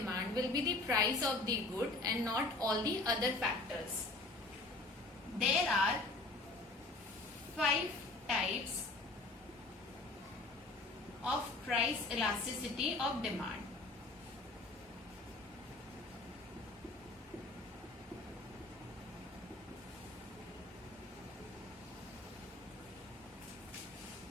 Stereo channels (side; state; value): right; quieter; 3.2 dB